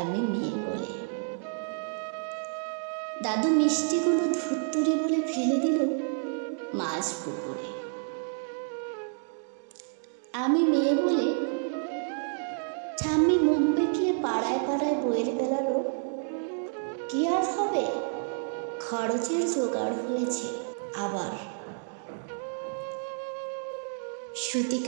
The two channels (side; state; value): left; silent; digital silence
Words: মেয়ে বলে। দাদু মিষ্টিগুলো ধুত্তুরি বলে ফেলে দিল মাছ পুকুরে। আমি মেয়ে বলে ঠাম্মি মুখ বেঁকিয়ে পাড়ায় পাড়ায় বইয়ের বেলারও কি আর হবে, খরচের জোগাড় হয়েছে। আবার